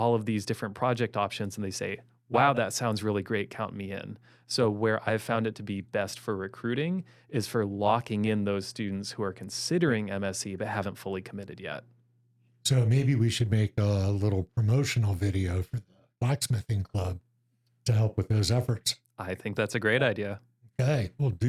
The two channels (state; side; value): identical; both; correlation 1.00